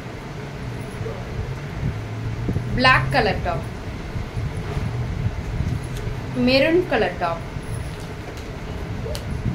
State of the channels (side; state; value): both; identical; correlation 1.00